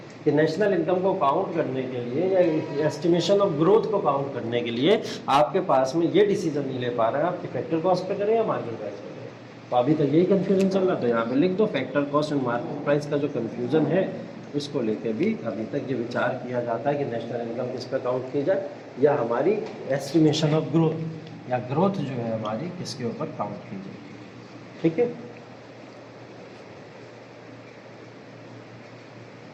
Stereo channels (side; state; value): both; identical; correlation 1.00